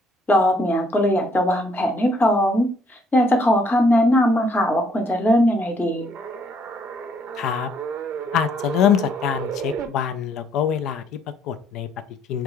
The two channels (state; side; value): normal; both; correlation 0.68